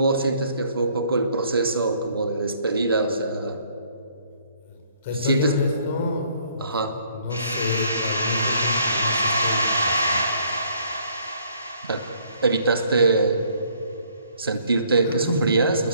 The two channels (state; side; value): inverted; both; correlation -0.64